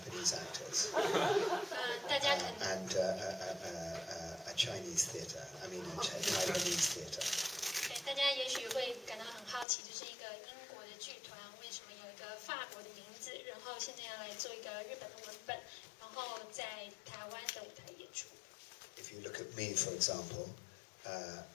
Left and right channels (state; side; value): drops out; right; at 9.7 s